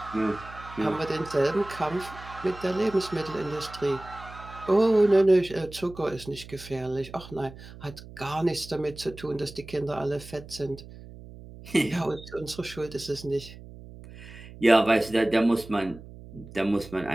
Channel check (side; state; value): right; noise; hum, 16 dB below the sound